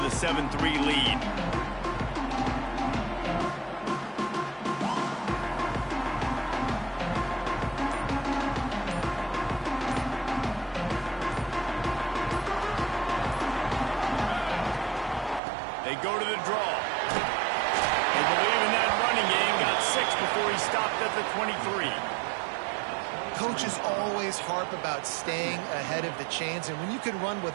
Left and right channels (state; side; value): drops out; left; at 15.4 s